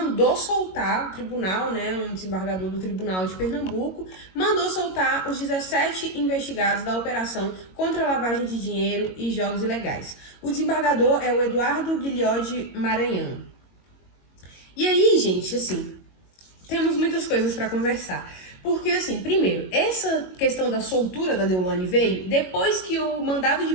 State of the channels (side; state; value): right; late; 22 ms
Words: soltar, o tribunal, né, um desembargador do Tribunal de Pernambuco, mandou soltar os 17 investigados da operação contra a lavagem de dinheiro e jogos ilegais. O desembargador é o Eduardo Guilhode Maranhão. E aí, gente, assim, temos muitas coisas para conversar. Porque, assim, primeiro, essa questão da soltura da Deolane veio depois que o mandado de